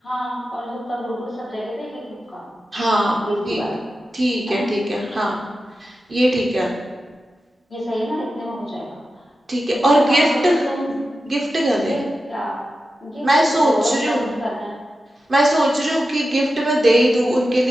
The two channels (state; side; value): normal; both; correlation 0.92